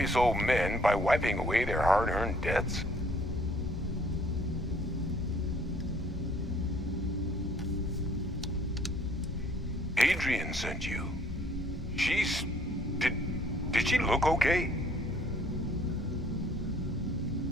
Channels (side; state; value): both; normal; correlation 0.60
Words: old men by wiping away their hard-earned debts? Adrian sent you. She's... Did she look okay?